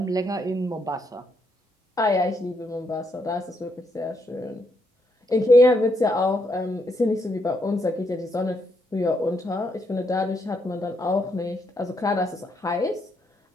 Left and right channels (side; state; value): both; normal; correlation 0.77